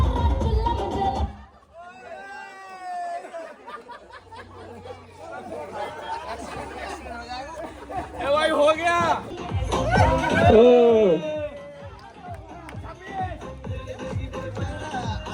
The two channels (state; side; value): identical; both; correlation 1.00